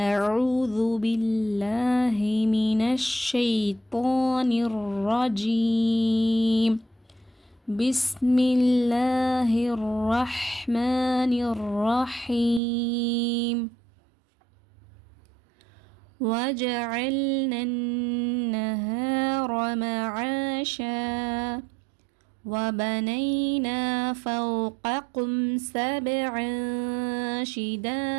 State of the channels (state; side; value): drops out; left; at 12.6 s